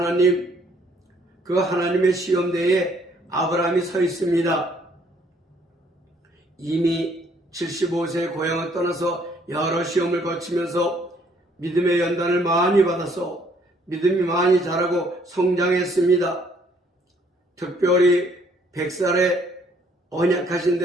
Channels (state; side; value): normal; both; correlation 0.64